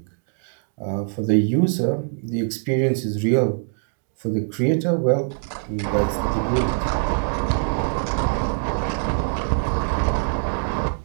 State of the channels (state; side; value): silent; left; 63 dB below the other